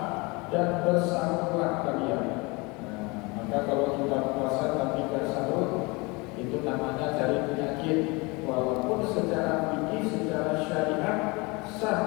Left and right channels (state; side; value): quieter; right; 26.4 dB